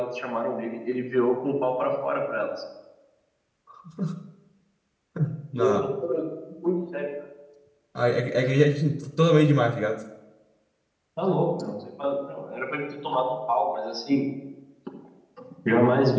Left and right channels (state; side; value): identical; both; correlation 1.00